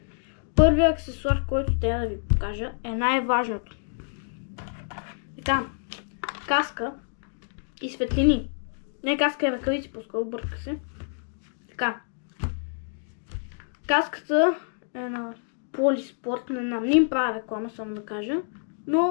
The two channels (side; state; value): right; silent; digital silence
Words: първият аксесуар, който трябва да ви покажа е най-важното. Така, каска и светлини. Не каска и ръкавици, по-скоро бърка се. Така, каската е на Полиспорт, не им правя реклама, само да кажа,